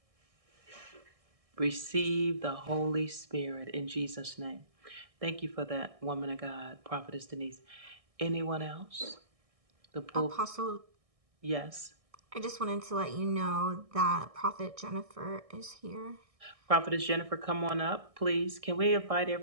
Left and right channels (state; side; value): late; left; 1.6 ms